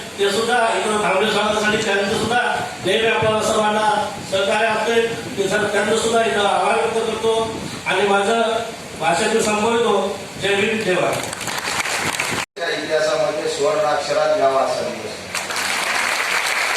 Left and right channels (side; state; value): both; identical; correlation 1.00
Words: ते सुद्धा इकडं थांबले स्वागतासाठी त्यांचं सुद्धा नेहमी आपल्याला सर्वांना सहकार्य असते. ते सर त्यांचं सुद्धा इथं आभार व्यक्त करतो आणि माझं भाषण मी संपवतो. जय भीम जय भारत. इतिहासामध्ये सुवर्ण अक्षरात गावा असा दिवस